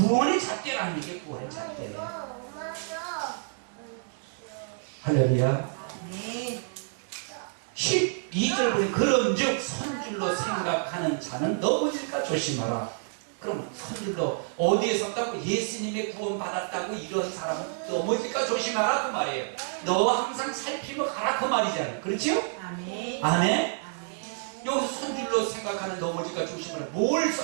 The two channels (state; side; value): silent; left; 59 dB below the other